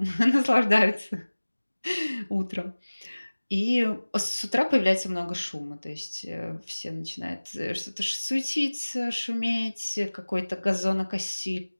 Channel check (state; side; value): inverted; both; correlation -1.00